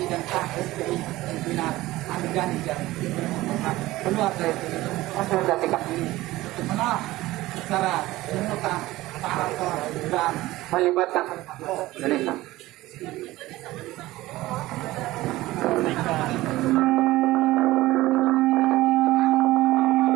dan KSPI pimpinan Andi Gani dan keluar dari konsolidasi kami untuk menolak secara simultan dan melibatkan Indonesia.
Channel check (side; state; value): left; quieter; 17.7 dB